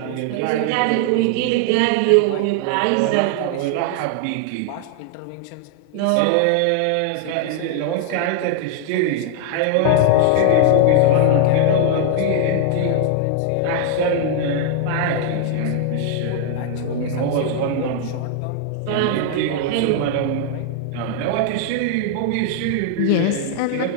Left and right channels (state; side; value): different; both; correlation 0.00